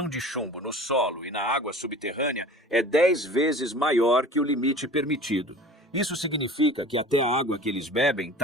de chumbo no solo e na água subterrânea é 10 vezes maior que o limite permitido. Isso significa que até a água que eles bebem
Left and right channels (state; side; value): normal; both; correlation 0.41